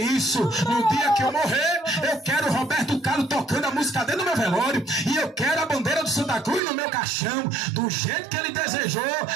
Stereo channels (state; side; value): drops out; left; at 6.6 s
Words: isso. No dia que eu morrer, eu quero Roberto Carlos tocando a música dele no meu velório, e eu quero a bandeira do Santa Cruz no meu caixão. Do jeito que ele desejou,